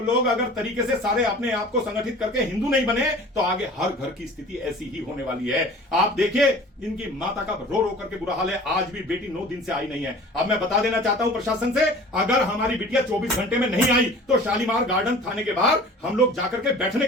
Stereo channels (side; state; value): both; normal; correlation 0.44